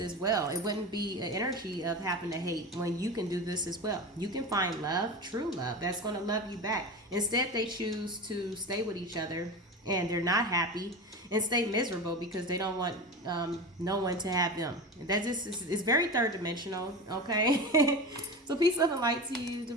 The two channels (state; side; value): normal; both; correlation 0.27